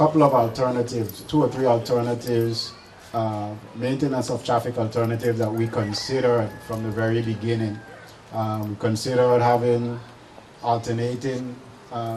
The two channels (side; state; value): both; identical; correlation 1.00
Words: of alternatives, 2 or 3 alternatives, maintenance of traffic alternatives that we considered from the very beginning. We considered having alternating